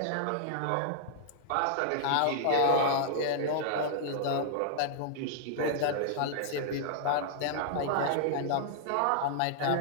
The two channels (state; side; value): different; both; correlation -0.01